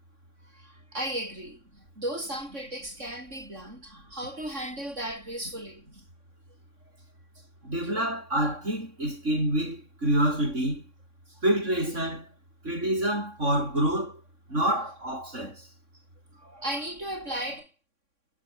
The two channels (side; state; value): left; late; 3.6 ms